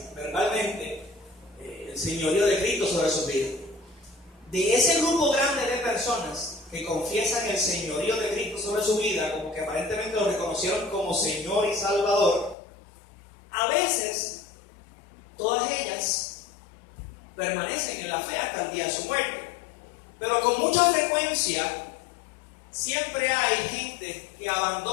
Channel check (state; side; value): drops out; right; at 12.6 s